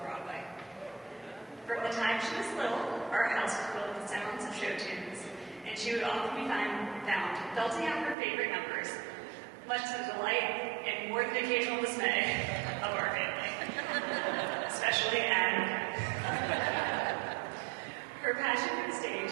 Broadway. From the time she was little, our house was filled with sounds of show tunes, and she would often be found belting out her favorite numbers, much to the delight and more than occasional dismay of our family, especially Adam. Her passion for the stage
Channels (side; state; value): left; drops out; at 8.2 s